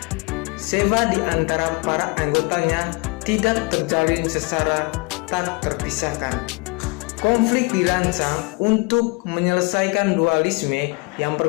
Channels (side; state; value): right; quieter; 28.6 dB